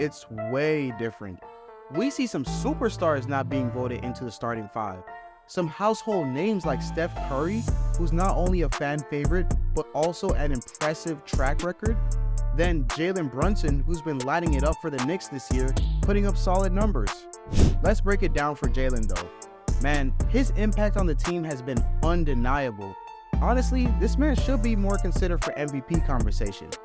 way different. We see some superstars not being voted into the starting 5. Some household names like Steph Curry, who's not only a fan favorite, but also an impressive track record. Then Jalen Brunson, who's been lighting it up for the Knicks this year, putting up solid numbers. Let's break it down for Jalen though. Man, his impact on the team has been undeniable. Honestly, this man should be more considered for MVP conversation.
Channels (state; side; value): identical; both; correlation 1.00